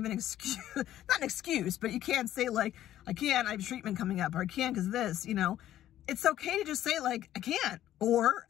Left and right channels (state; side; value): quieter; right; 12.6 dB